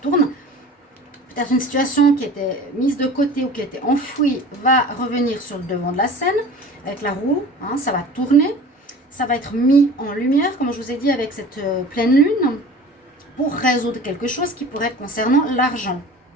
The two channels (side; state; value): both; normal; correlation 0.41